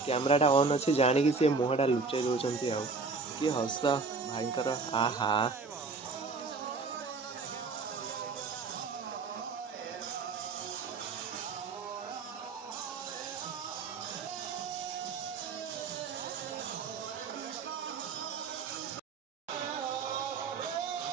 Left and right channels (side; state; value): left; quieter; 4.3 dB